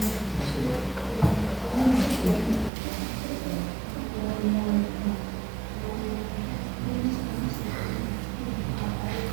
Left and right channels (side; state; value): left; drops out; at 2.7 s